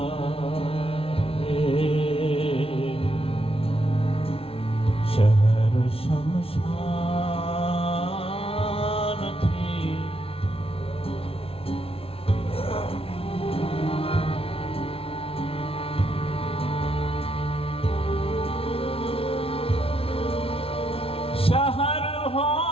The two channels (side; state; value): right; late; 0.27 ms